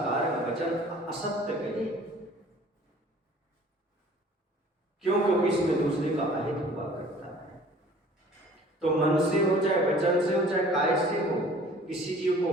वचन असत्य कहे क्यों? क्योंकि इसमें दूसरे का अहित हुआ करता है। तो मन से हो, चाहे वचन से हो, चाहे काय से हो, किसी जीव को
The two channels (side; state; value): both; normal; correlation 0.50